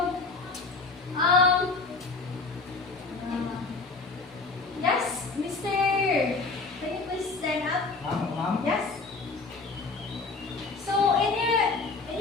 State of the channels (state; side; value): quieter; right; 3.9 dB